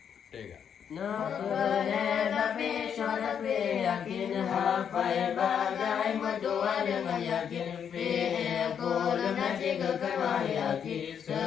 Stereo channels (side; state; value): right; quieter; 7.9 dB